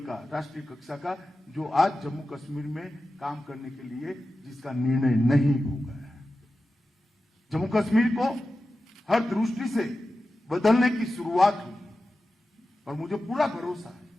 राष्ट्रीय कक्षा का, जो आज जम्मू कश्मीर में काम करने के लिए जिसका निर्णय नहीं हो गया है। जम्मू कश्मीर को हर दृष्टि से बदलने की शुरुआत हुई और मुझे पूरा भरोसा है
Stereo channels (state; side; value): normal; both; correlation 0.93